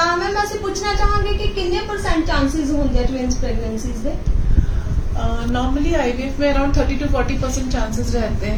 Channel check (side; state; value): both; identical; correlation 1.00